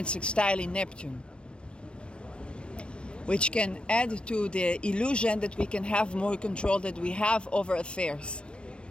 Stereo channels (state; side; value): late; right; 0.057 ms